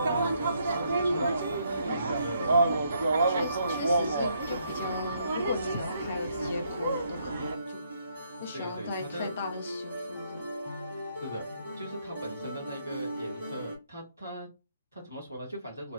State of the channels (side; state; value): both; inverted; correlation -0.73